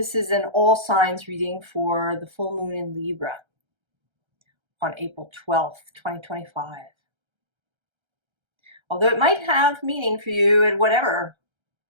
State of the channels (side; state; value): left; late; 1.3 ms